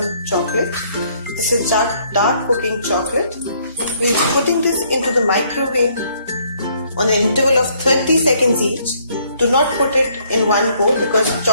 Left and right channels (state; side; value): inverted; both; correlation -0.66